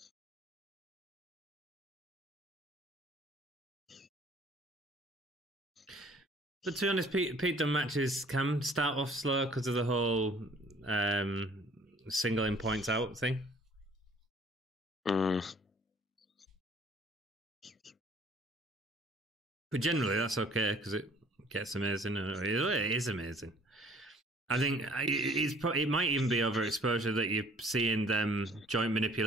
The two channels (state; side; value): normal; both; correlation 0.55